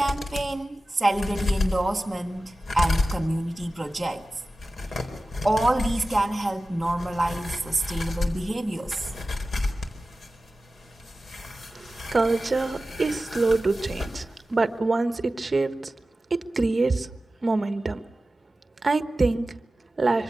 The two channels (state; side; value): normal; both; correlation 0.95